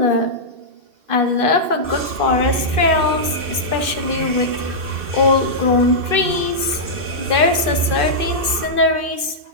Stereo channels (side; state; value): left; late; 2.5 ms